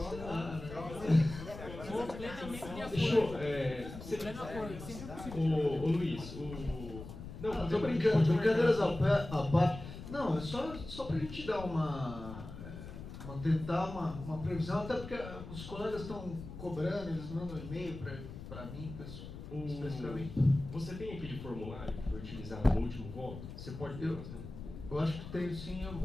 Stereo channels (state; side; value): noise; left; rumble, 11 dB below the sound